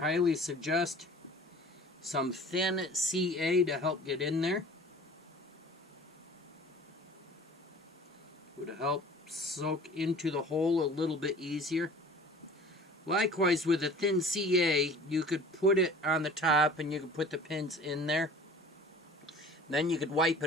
suggest some thin CA to help get in there. Would help soak into the hole a little bit easier. Likewise, with a thin CA, you could put it on the top and you could put the pins in there. Then you could wipe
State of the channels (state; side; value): normal; both; correlation 0.45